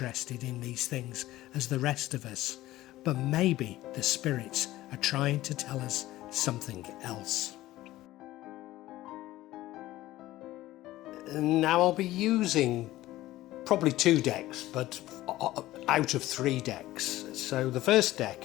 in these things as the rest of us. But maybe the spirits are trying to tell us something else. Now I'll be using probably 2 decks, but out of 3 decks. So the first deck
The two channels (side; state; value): right; quieter; 16.1 dB